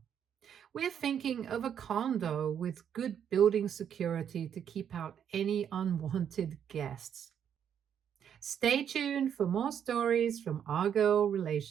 We're thinking of a condo with good building security to keep out any unwanted guests. Stay tuned for more stories from our girl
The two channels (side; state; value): left; quieter; 8.7 dB